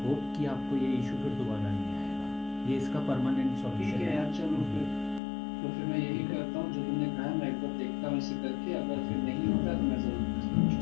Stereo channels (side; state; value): right; drops out; at 5.2 s